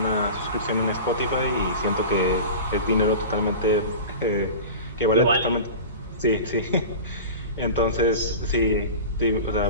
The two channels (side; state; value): both; inverted; correlation -0.32